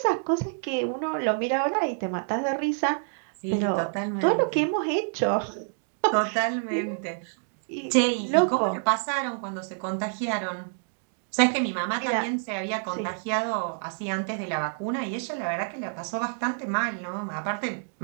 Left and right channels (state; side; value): silent; left; digital silence